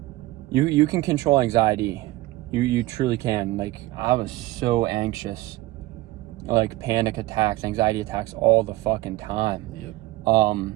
you can control anxiety. You truly can. Like, I was so anxious, like panic attacks, anxiety attacks all the fucking time. Yep.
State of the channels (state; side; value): quieter; left; 18.1 dB